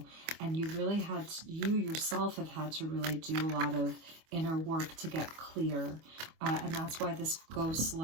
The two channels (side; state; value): left; late; 25 ms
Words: and you really had, you yourself have had to really do a lot of inner work to get clear. And that's why this goes